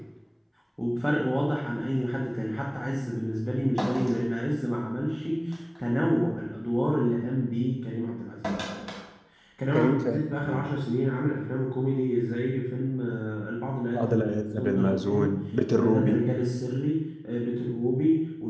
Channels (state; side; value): identical; both; correlation 1.00